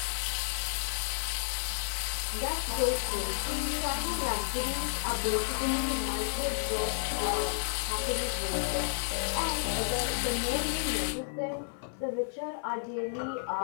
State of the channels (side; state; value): right; silent; 56 dB below the other